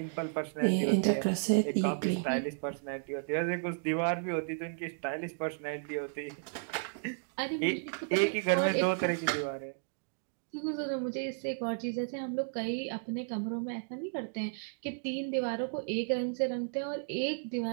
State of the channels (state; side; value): silent; left; digital silence